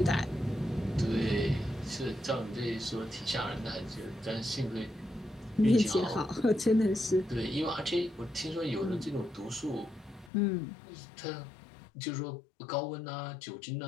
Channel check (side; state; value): right; drops out; at 10.3 s